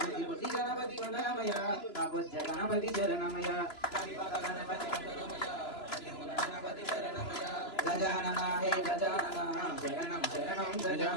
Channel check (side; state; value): right; late; 3.0 ms